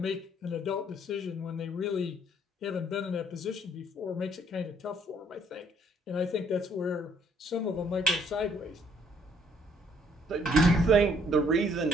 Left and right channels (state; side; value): normal; both; correlation 0.64